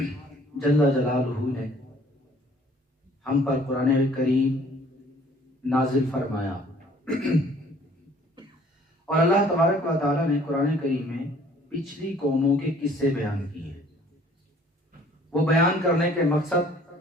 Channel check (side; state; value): both; normal; correlation 0.56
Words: جل جلالہ نے ہم پر قرآن کریم نازل فرمایا اور اللہ تبارک و تعالی نے قرآن کریم میں پچھلی قوموں کے قصے بیان کیے۔ وہ بیان کرنے کے مقصد